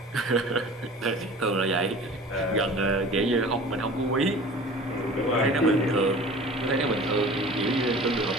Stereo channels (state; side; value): normal; both; correlation 0.42